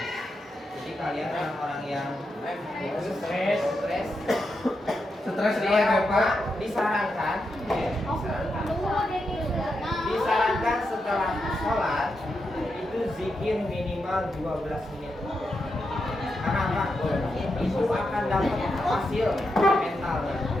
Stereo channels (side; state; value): both; normal; correlation 0.85